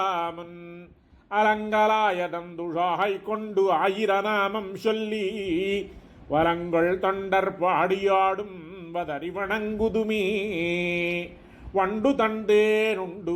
அலங்கலாயதந்துழாய் கொண்டு ஆயிரநாமம் சொல்லி வரங்கள் தொண்டர் பாடியாடும் வதறி வணங்குதுமே வண்டு தண்டேனுண்டு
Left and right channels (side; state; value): both; identical; correlation 1.00